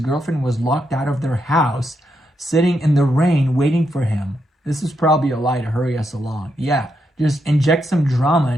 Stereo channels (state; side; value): normal; both; correlation 0.81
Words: was locked out of their house, sitting in the rain, waiting for him. This is probably a lie to hurry us along. Yeah, just inject some drama